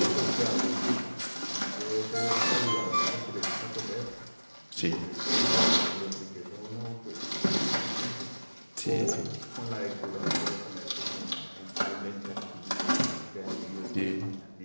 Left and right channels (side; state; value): both; inverted; correlation -1.00